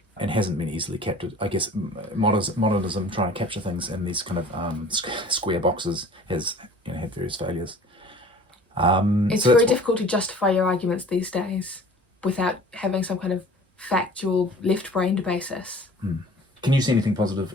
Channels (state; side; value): normal; both; correlation 0.47